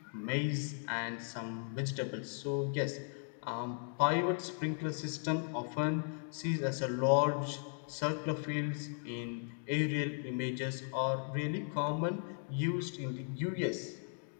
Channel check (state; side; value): silent; right; 53 dB below the other